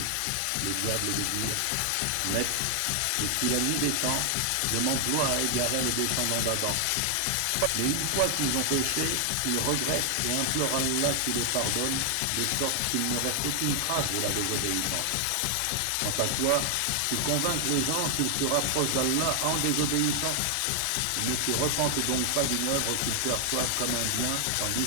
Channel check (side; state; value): both; different; correlation 0.00